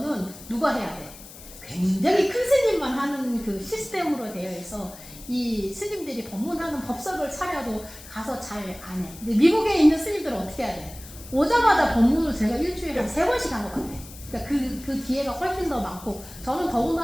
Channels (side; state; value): left; noise; hiss, 17 dB below the sound